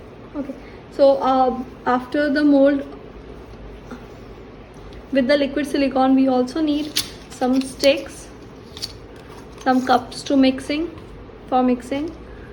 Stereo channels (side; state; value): both; identical; correlation 1.00